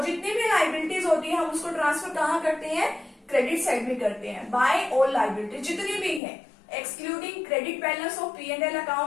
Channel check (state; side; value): drops out; right; at 6.2 s